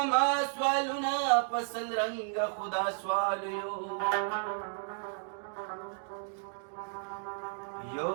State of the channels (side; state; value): left; silent; digital silence